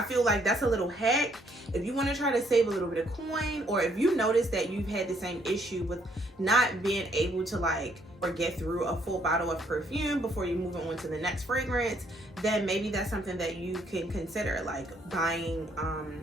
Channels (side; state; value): both; normal; correlation 0.68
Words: feel like that's a little hack. If you want to try to save a little bit of coin, or if you notice that you've had the same issue with not being able to like or get through a full bottle of perfume before you move on to the next fragrance, then maybe that's something that you can consider, like buying